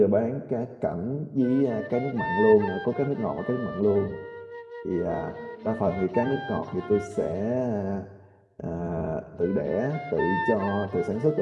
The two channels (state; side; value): identical; both; correlation 1.00